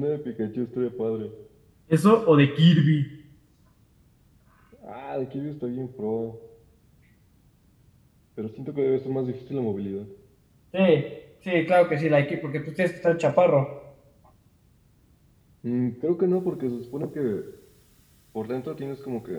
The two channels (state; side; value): identical; both; correlation 1.00